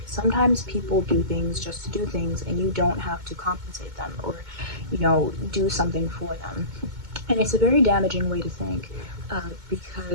Sometimes people do things just to do things and you don't have to compensate them or, you know, do something for them. And it's a very damaging way to think,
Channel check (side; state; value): left; late; 2.2 ms